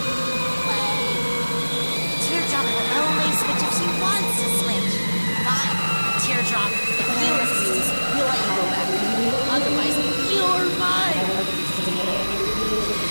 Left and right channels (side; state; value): both; inverted; correlation -1.00